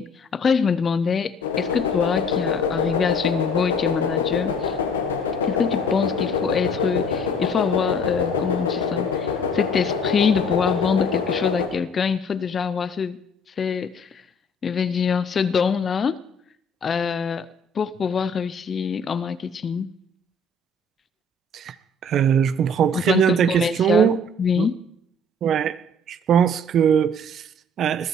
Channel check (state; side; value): normal; both; correlation 0.53